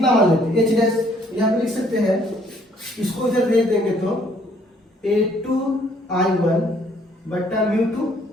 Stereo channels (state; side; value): normal; both; correlation 0.63